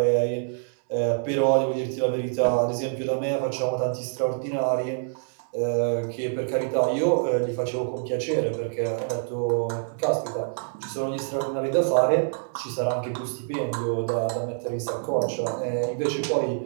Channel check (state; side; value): silent; left; 61 dB below the other